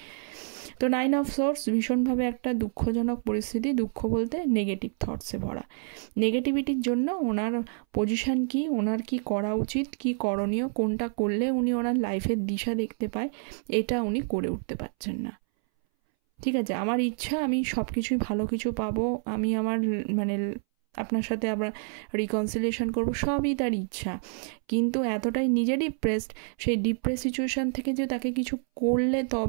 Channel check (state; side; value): silent; left; 59 dB below the other